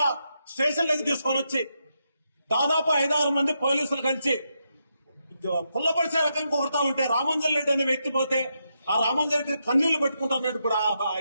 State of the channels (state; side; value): inverted; both; correlation -0.82